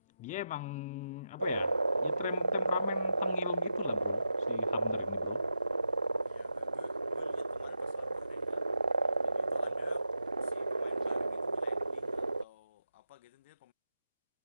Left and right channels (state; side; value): inverted; both; correlation -0.88